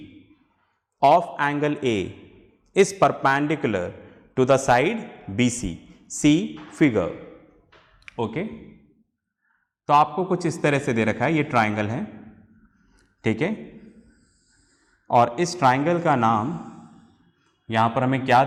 of angle A is perpendicular to the side BC, see figure. Okay, तो आपको कुछ इस तरह से दे रखा है, ये ट्राइंगल है, ठीक है। और इस ट्राइंगल का नाम यहां पर हमें क्या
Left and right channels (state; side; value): identical; both; correlation 1.00